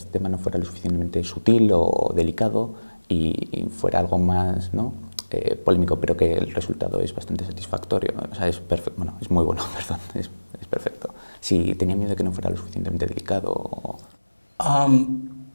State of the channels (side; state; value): both; inverted; correlation -1.00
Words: tema no fuera lo suficientemente sutil o delicado y fuera algo más, ¿no? Polémico, pero que el resultado es bastante satisfactorio, o sea, es perfecto, bueno, es muy bueno, perdón, es perfecto. Si tenía miedo de que no fuera lo suficientemente delicado.